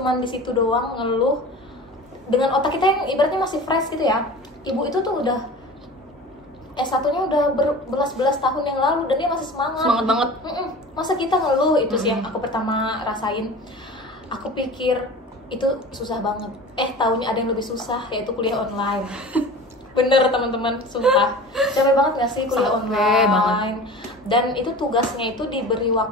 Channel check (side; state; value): both; normal; correlation 0.37